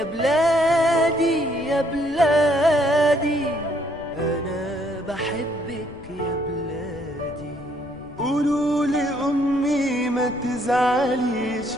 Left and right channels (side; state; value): left; noise; rumble, 20 dB below the sound